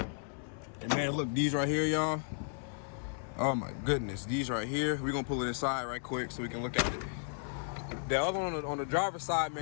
And man, look, these right here, y'all. Oh my goodness, these right here. We're gonna pull it inside right quick so we can look at it. The other one on the driver's side,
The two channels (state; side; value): silent; right; 55 dB below the other